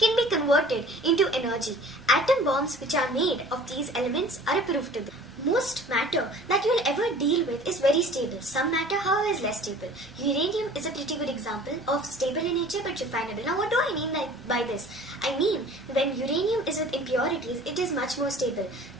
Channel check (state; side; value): normal; both; correlation 0.47